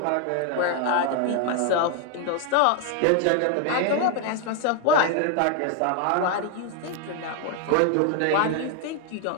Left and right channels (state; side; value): different; both; correlation 0.00